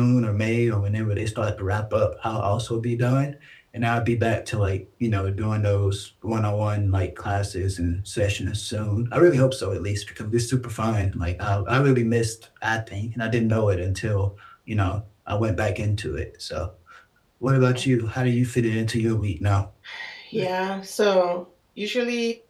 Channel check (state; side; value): identical; both; correlation 1.00